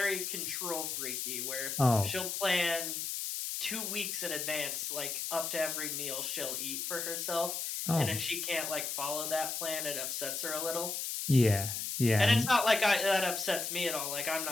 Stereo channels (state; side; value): noise; left; hiss, 3 dB below the sound